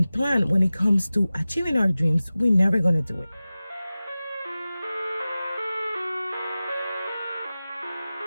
plan when it comes to achieving our dreams, we're never going to do it.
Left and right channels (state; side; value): inverted; both; correlation -0.97